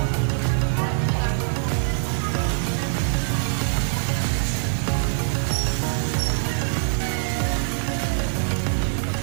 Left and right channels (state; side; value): silent; left; digital silence